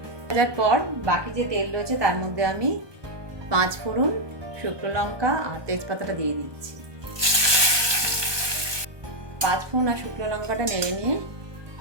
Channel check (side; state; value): left; late; 1.2 ms